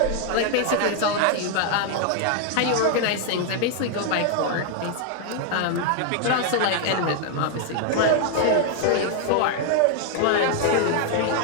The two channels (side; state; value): both; different; correlation 0.00